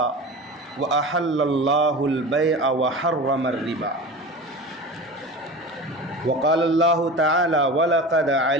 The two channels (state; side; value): normal; both; correlation 0.32